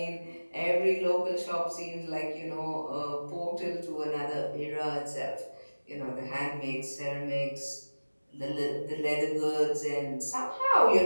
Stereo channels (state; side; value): inverted; both; correlation -1.00